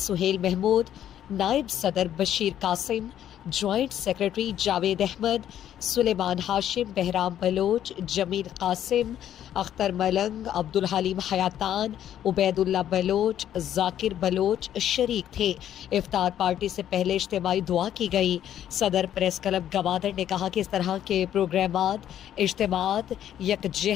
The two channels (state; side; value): quieter; right; 10.8 dB